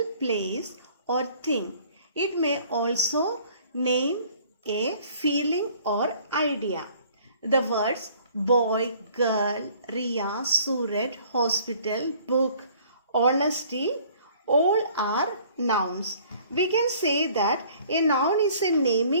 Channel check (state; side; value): inverted; both; correlation -0.55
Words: place or thing. It may also name a feeling or idea. The words boy, girl, Riya, Suraj, hospital, book, honesty, all are nouns. We can say that a noun is a